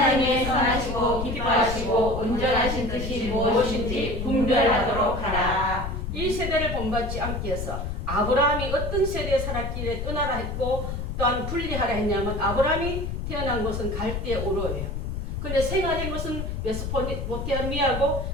선하시고 기뻐하시고 온전하신 뜻이 무엇인지 분별하도록 하라. 이 세대를 본받지 않기 위해서 아브라함이 어떤 세대에 살았기에 떠나라 했고 또한 분리하라 했냐면 아브라함이 태어난 곳은 갈대 우르예요. 근데 생활한 곳은 메소포타미아고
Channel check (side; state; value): left; noise; rumble, 4 dB below the sound